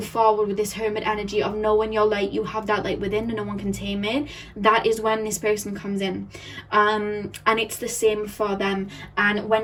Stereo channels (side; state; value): both; identical; correlation 1.00